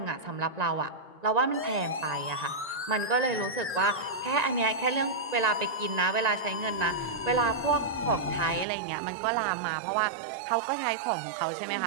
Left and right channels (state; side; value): drops out; left; at 8.7 s